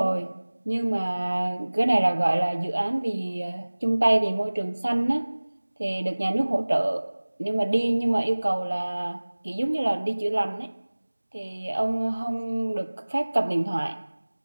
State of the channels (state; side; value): inverted; both; correlation -1.00